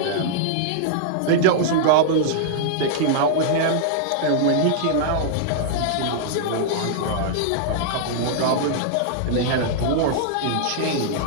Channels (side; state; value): both; different; correlation -0.02